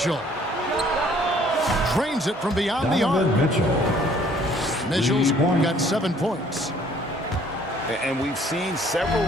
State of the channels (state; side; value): normal; both; correlation 0.59